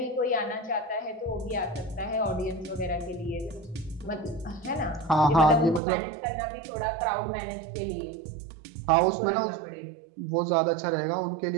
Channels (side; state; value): left; drops out; at 5.8 s